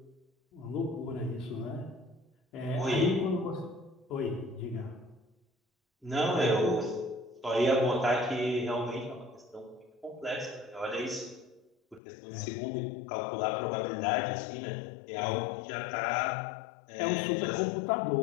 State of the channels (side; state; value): right; drops out; at 12.0 s